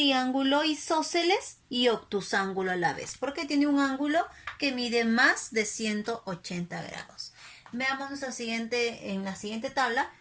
isósceles y obtusángulo a la vez, porque tiene un ángulo que mide más de 180 grados. Veamos en la siguiente tabla,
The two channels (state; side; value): identical; both; correlation 1.00